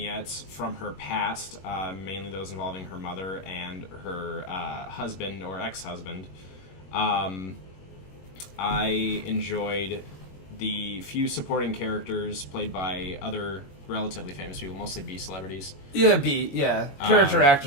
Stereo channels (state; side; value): late; right; 21 ms